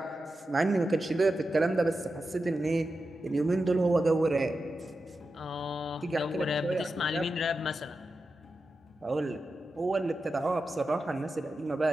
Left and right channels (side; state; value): both; normal; correlation 0.90